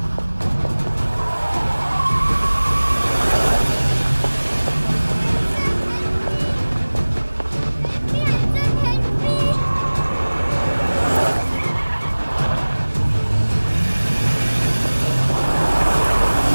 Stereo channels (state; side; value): inverted; both; correlation -1.00